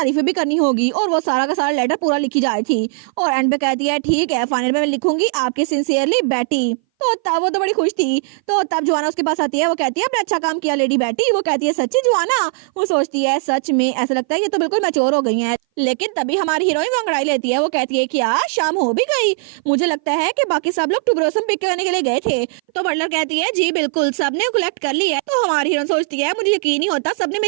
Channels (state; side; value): silent; left; 60 dB below the other